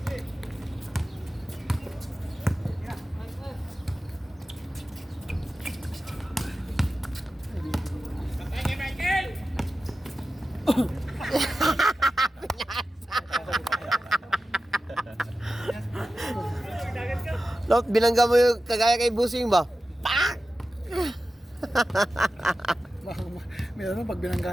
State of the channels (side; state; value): both; normal; correlation 0.94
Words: Lot, binangga mo yung kagaya kay Busing ba? Pak! Meron pag binangga